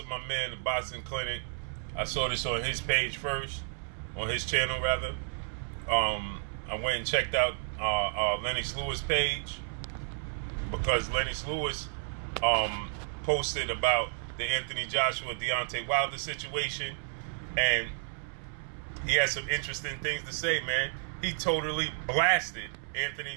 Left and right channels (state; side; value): silent; left; 57 dB below the other